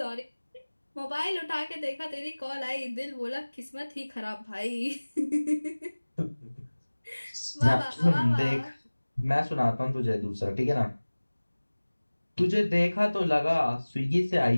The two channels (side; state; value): both; inverted; correlation -1.00